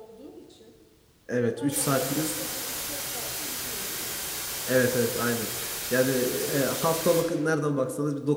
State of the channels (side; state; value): both; identical; correlation 1.00